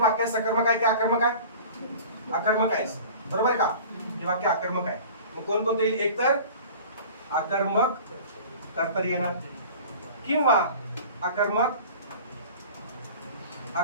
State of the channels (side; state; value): both; inverted; correlation -0.41